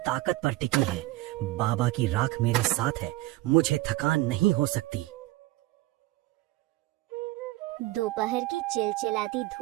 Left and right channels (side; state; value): left; quieter; 18.5 dB